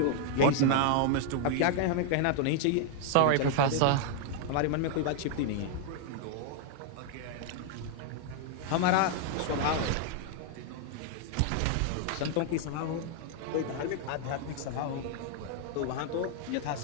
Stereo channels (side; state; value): both; different; correlation 0.00